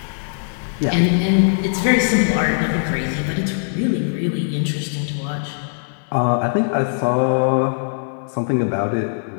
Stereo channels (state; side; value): silent; right; 66 dB below the other